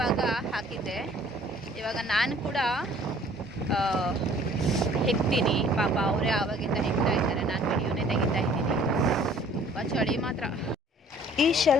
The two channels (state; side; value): normal; both; correlation 0.54